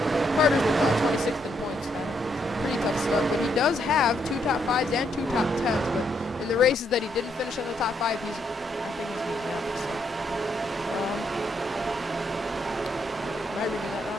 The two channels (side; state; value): both; normal; correlation 0.75